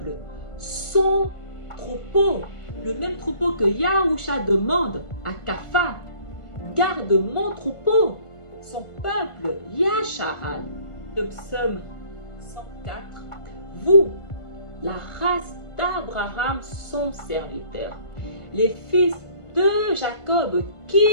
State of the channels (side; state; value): right; late; 1.5 ms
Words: son troupeau, le même troupeau que Yahusha demande à Kapha. Garde mon troupeau, son peuple, Yasharal. Le psaume 104. Vous, la race d'Abraham, son serviteur, les fils de Jacob